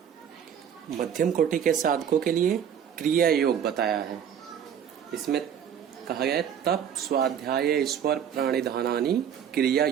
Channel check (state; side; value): quieter; left; 8.6 dB